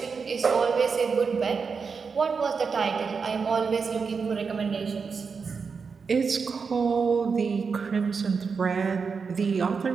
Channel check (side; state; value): left; quieter; 5.4 dB